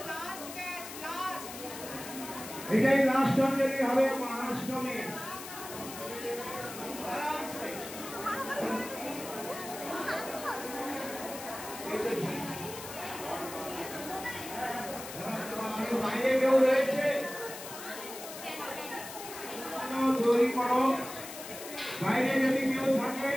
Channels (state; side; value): noise; left; hiss, 11 dB below the sound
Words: এটাই লাস্ট অঞ্জলি হবে মহাষ্টমী। বাইরে কেউ রয়েছে তৈরি করো। বাইরে যদি কেউ থাকে